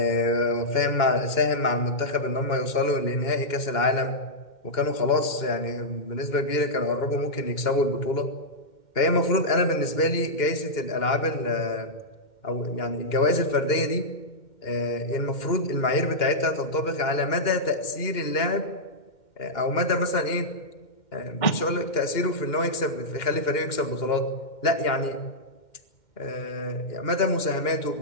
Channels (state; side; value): late; right; 2.1 ms